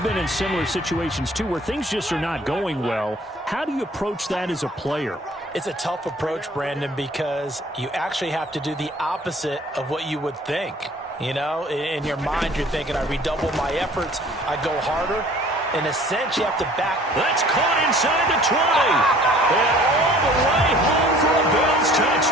been in similar situations too where things just are not going well. How do you approach that as a player? It's a tough approach, Brandon, because you actually have to do the opposite of what you would think. You know, in your mind, you're thinking, I redouble my efforts, I go harder. In a sense, you have to back. That's caught inside the 20. And all the way home for a Bills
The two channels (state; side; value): normal; both; correlation 0.52